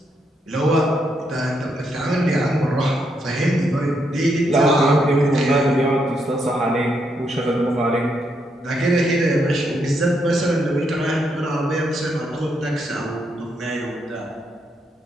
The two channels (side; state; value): both; normal; correlation 0.78